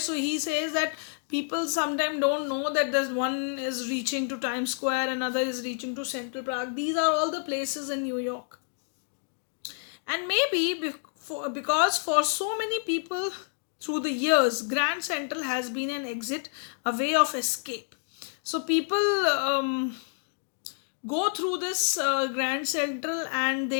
he says that people sometimes don't know that there's one is reaching to Times Square, another is reaching to Central Park. These are all the places in New York. And maybe because for so many people through the years, Grand Central has been an exit, a way of escape. So people go through this Grand Central, and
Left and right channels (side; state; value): right; silent; 59 dB below the other